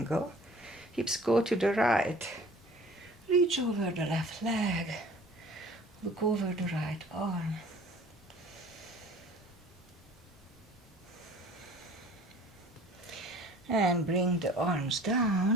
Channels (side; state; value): both; normal; correlation 0.48